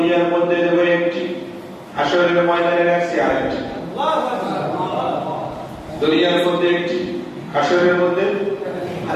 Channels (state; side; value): identical; both; correlation 1.00